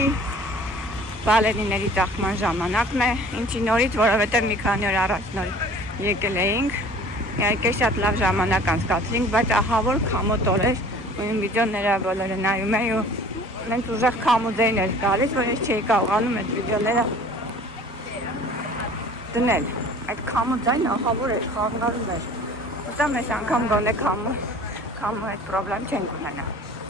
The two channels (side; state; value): both; normal; correlation 0.47